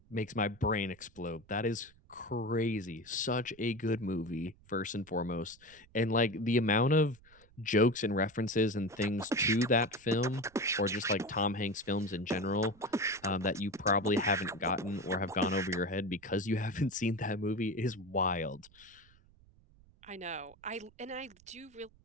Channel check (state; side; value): noise; right; rumble, 27 dB below the sound